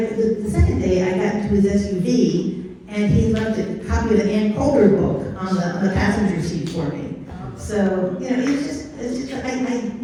second day, I got into his SUV, and he left a copy of the Ann Coulter book on the passenger seat for me. So, it's just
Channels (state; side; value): identical; both; correlation 1.00